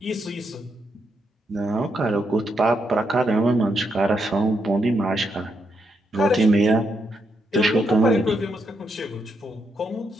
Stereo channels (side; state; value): both; normal; correlation 0.80